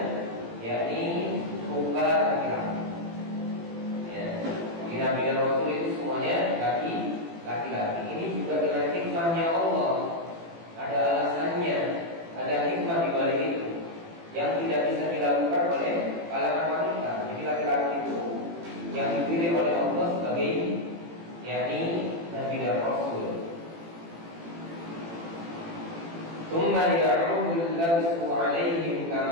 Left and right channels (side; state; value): left; late; 18 ms